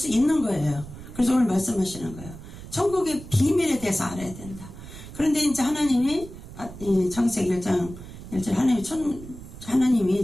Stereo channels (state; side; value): noise; right; rumble, 14 dB below the sound